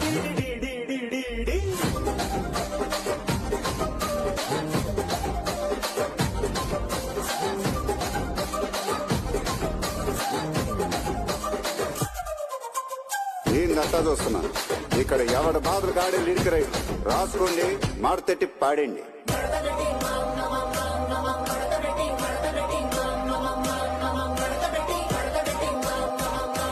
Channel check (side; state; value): both; identical; correlation 1.00